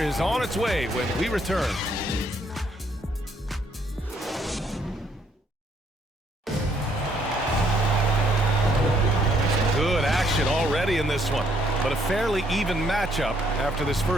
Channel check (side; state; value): both; normal; correlation 0.68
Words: on its way when we return. Good action already in this one, but a fairly even matchup after this